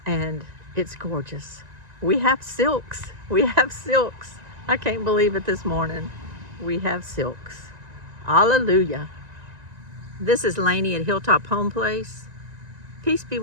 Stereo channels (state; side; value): late; left; 1.9 ms